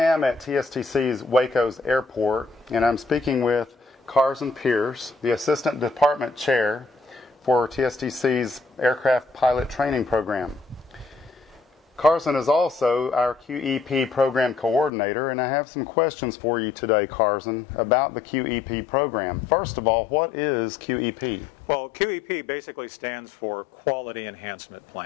at TSTC's Waco's airport, and I'm speaking with Carson Pierce, the Assistant Department Chair for TSTC's Aircraft Pilot Training Program. Carson is also our QEP Program Coordinator, and I have some questions for you today, Carson, about the QEP program. First of all, what is QEP? Well, QEP basically stands for Quality Enhancement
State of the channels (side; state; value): right; drops out; at 14.9 s